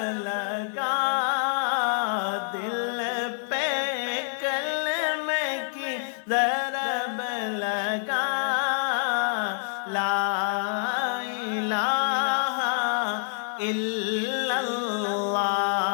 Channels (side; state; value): right; silent; digital silence